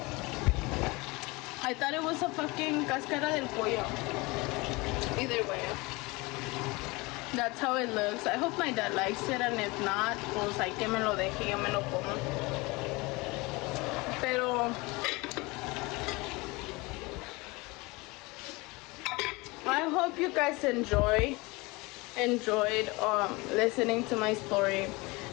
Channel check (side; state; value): right; quieter; 24.3 dB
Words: I thought it was a fucking cáscara del pollo. Either way. That's how it looks. I hope my dad likes it, and if not, pues hay que me lo deje y yo me lo como. Pero I hope you guys enjoyed listening to my story,